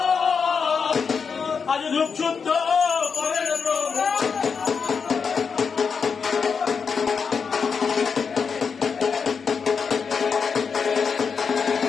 আজ রূপ শুদ্ধ করেন প্রভু।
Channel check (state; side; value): quieter; right; 5.9 dB